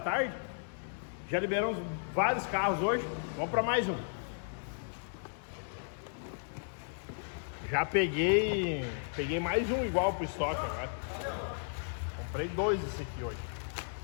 Já liberamos vários carros hoje. Vamos para mais um. Já peguei mais um igual pro estoque agora. Comprei 2 desse aqui hoje.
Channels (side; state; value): right; silent; digital silence